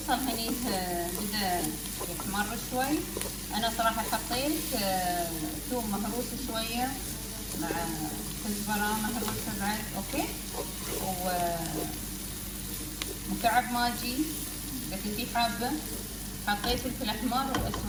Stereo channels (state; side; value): identical; both; correlation 1.00